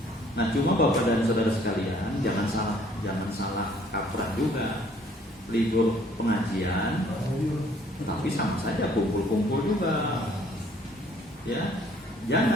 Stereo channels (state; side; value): normal; both; correlation 0.60